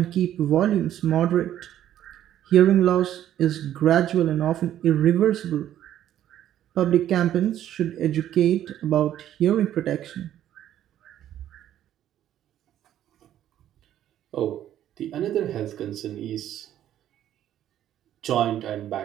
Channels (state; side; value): quieter; left; 11.6 dB